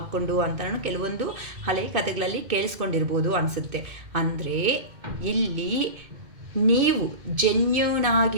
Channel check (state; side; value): late; left; 2.6 ms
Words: ಅಂತ ನಾನು ಕೆಲವೊಂದು ಹಳೆ ಕಥೆಗಳಲ್ಲಿ ಕೇಳಿಸ್ಕೊಂಡಿರ್ಬೋದು ಅನಿಸುತ್ತೆ. ಅಂದರೆ ಇಲ್ಲಿ ನೀವು ಜೆನ್ಯೂನ್